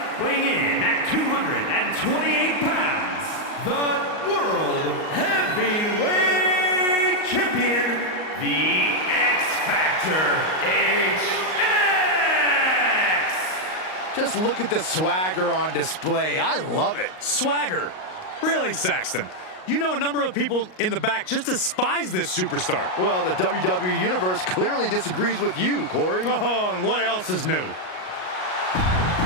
weighing in at 228 pounds, the World Heavyweight Champion, the X-Factor, HX! Just look at the swagger on display. I love it. Swagger? Really, Saxton? You know a number of people in the back just despise this superstar. Well, the WWE Universe clearly disagrees with you, Corey. Oh, and what else is new?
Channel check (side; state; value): right; late; 38 ms